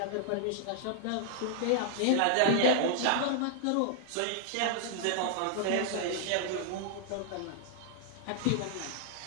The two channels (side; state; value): both; different; correlation -0.01